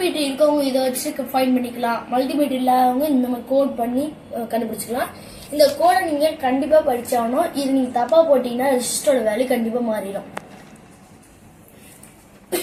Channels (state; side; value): identical; both; correlation 1.00